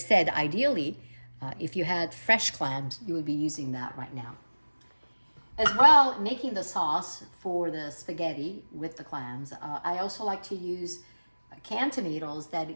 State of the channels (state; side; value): inverted; both; correlation -1.00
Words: ideally, if you had fresh clams, you would be using that right now. As well, making the sauce for the spaghetti with the clams, I also like to use canned tomatoes that